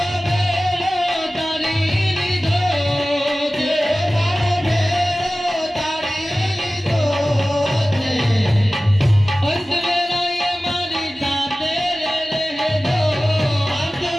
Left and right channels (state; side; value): normal; both; correlation 0.96